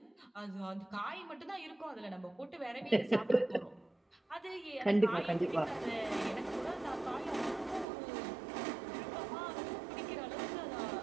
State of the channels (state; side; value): drops out; left; at 7.9 s